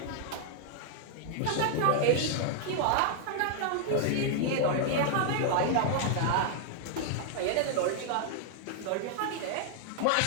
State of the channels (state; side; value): different; both; correlation -0.01